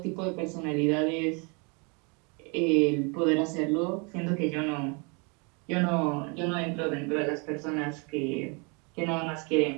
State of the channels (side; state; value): left; quieter; 32.5 dB